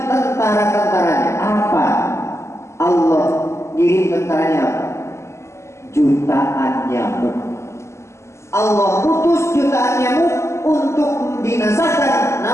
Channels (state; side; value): late; right; 0.13 ms